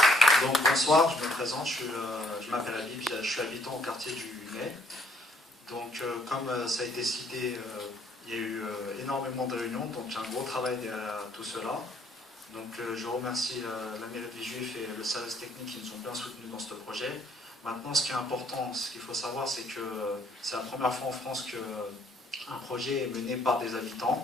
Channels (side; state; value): both; normal; correlation 0.65